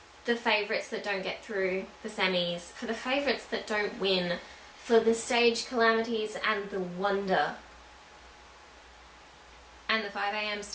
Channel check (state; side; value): identical; both; correlation 1.00